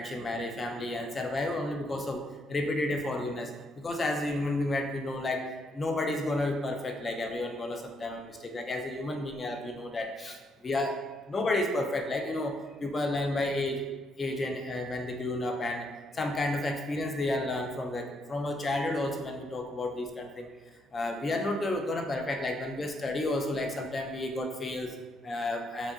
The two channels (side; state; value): both; normal; correlation 0.75